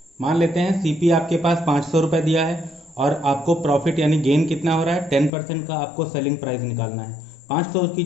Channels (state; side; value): drops out; right; at 5.3 s